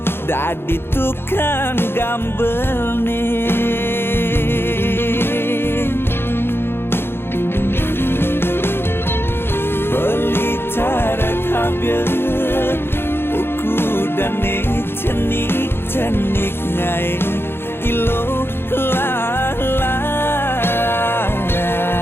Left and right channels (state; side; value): late; right; 0.11 ms